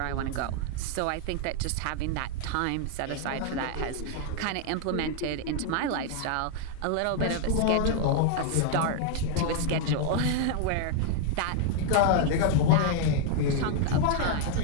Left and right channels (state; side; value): different; both; correlation 0.00